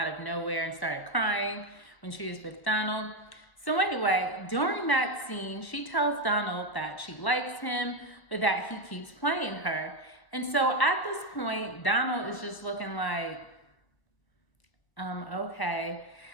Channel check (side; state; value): right; late; 1.0 ms